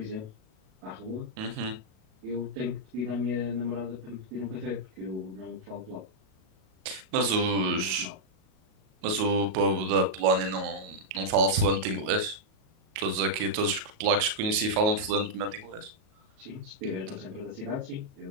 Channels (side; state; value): left; late; 37 ms